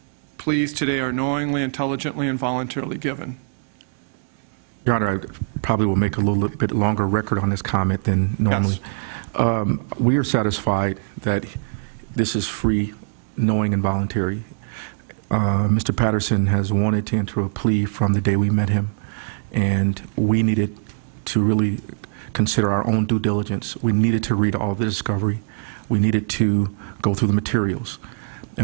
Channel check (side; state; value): left; silent; digital silence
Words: pleas today are knowingly, intelligently, and voluntarily given? Your Honor, I probably will make a little bit longer record on this comment than normally. Yes. We are satisfied that this is free, knowing, and voluntary. Mr. Patterson has wanted to enter a plea from the day we met him, and we needed to really consider our own due diligence. We needed to read all the discovery. We needed to go through the materials.